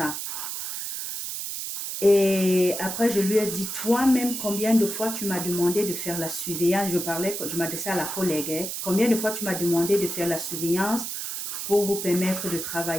Et après, je lui ai dit, toi-même, combien de fois tu m'as demandé de faire la surveillance? Je m'adressais à la collègue, hein. Combien de fois tu m'as demandé de faire la surveillance pour vous permettre de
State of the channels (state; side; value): noise; right; hiss, 5 dB below the sound